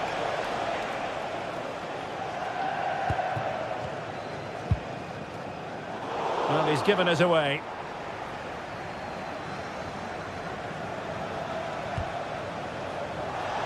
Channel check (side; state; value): both; identical; correlation 1.00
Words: Well, he's given us away.